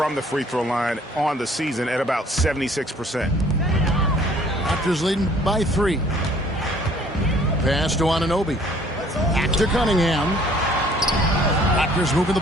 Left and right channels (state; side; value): normal; both; correlation 0.57